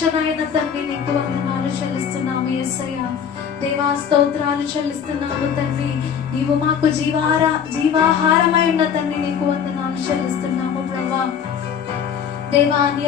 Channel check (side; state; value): right; quieter; 7.6 dB